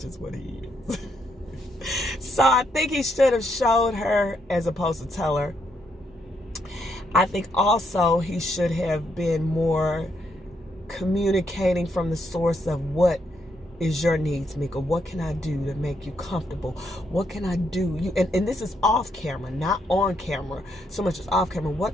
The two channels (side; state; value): both; normal; correlation 0.76